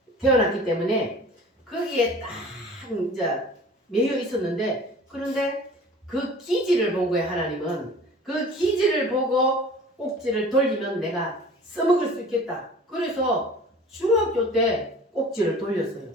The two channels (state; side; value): normal; both; correlation 0.44